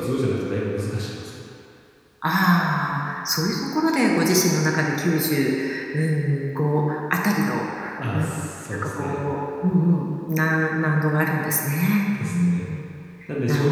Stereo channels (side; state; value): both; identical; correlation 1.00